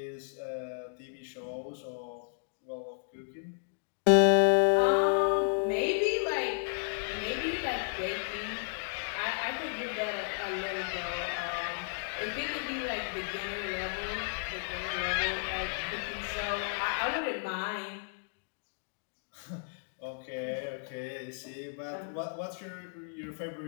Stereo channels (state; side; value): silent; right; digital silence